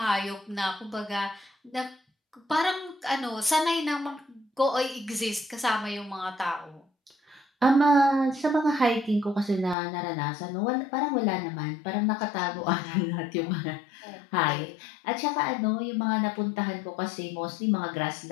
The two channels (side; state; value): right; drops out; at 9.8 s